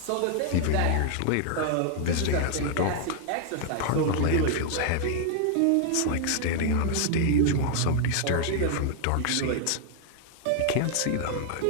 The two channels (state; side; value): different; both; correlation 0.00